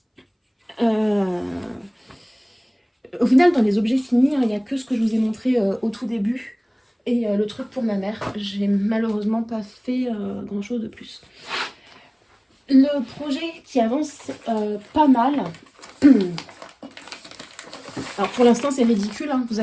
Au final, dans les objets finis, il n'y a que ce que je vous ai montré au tout début. Et le truc pour ma mère, j'ai malheureusement pas fait grand chose de plus. Le projet qui avance pas mal. Alors pour l'instant c'est ridicule, hein, vous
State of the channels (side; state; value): both; identical; correlation 1.00